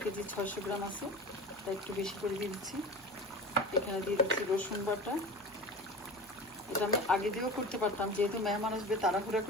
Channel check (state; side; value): noise; left; hum, 29 dB below the sound